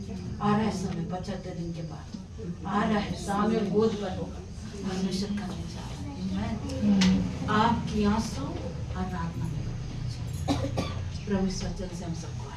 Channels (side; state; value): both; identical; correlation 1.00